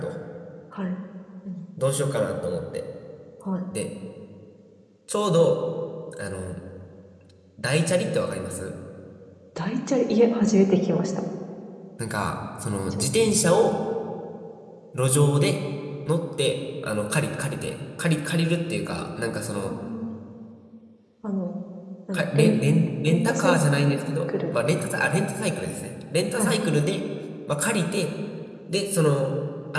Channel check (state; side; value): identical; both; correlation 1.00